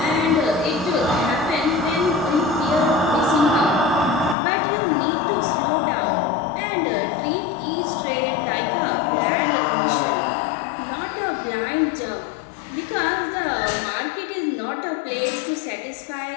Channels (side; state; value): right; drops out; at 4.4 s